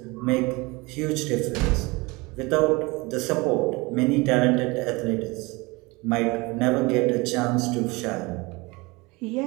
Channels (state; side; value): quieter; left; 24.7 dB